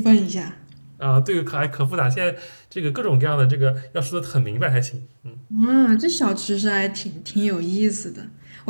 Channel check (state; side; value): inverted; both; correlation -1.00